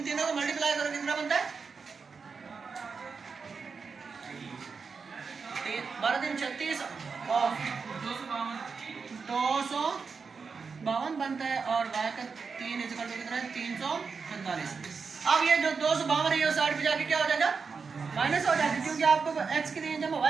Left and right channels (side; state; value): left; quieter; 5.2 dB